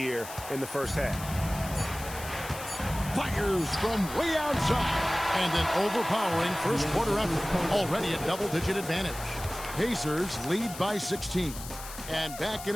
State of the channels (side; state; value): left; noise; hiss, 12 dB below the sound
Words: in the first half. Fires from way outside. And an overpowering first quarter effort. Already a double-digit advantage. Pacers lead by 16. And back in